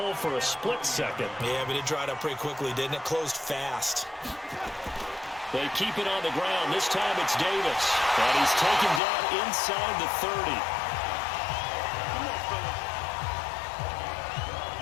for a split second. Yeah, but it dried up pretty quickly, didn't it? Closed fast. They keep it on the ground. This time it's Davis, and he's taken down inside the 30.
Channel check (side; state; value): right; drops out; at 9.0 s